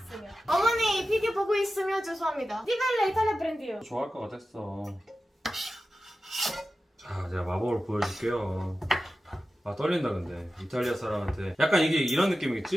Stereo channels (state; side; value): normal; both; correlation 0.94